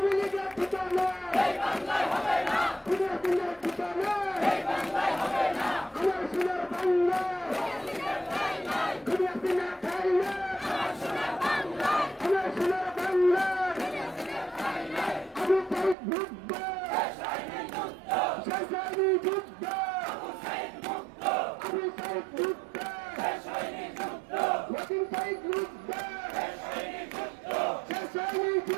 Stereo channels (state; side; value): drops out; left; at 16.0 s